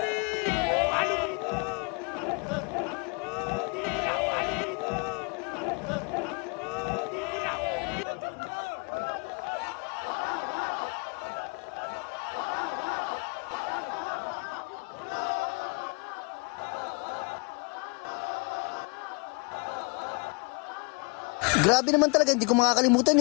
Ano dito? Grabe naman talaga, hindi ko makakalimutan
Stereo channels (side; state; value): right; quieter; 33.8 dB